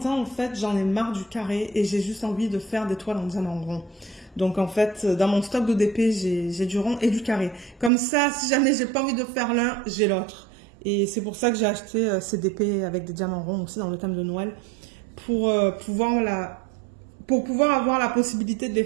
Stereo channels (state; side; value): drops out; left; at 7.9 s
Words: en fait, j'en ai marre du carré et j'ai juste envie de faire des toiles en diamant rond. Donc, en fait, dans mon stock de DP, j'ai du rond et du carré. Comme ça, si jamais j'ai pas envie de faire l'un, j'ai l'autre. Et c'est pour ça que j'ai acheté ces DP avec des diamants ronds aussi dans le thème de Noël. Pour pouvoir avoir la possibilité de les